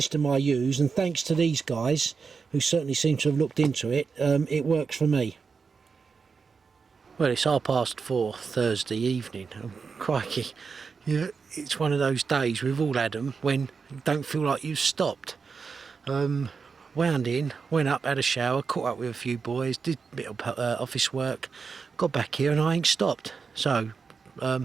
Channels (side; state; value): left; quieter; 5.3 dB